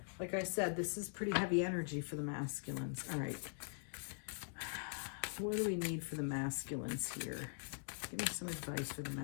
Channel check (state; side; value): silent; right; digital silence